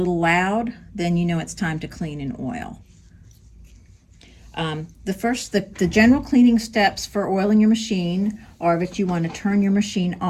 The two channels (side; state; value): both; identical; correlation 1.00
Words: loud, then you know it's time to clean and oil. The general cleaning steps for oiling your machine are that you want to turn your machine